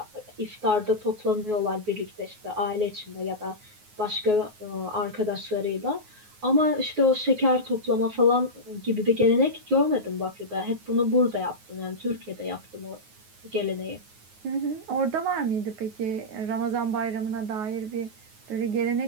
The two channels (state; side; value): late; left; 9.4 ms